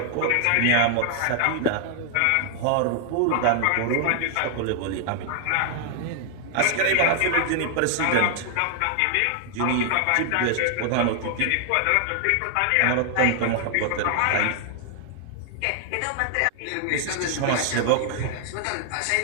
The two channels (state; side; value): different; both; correlation 0.00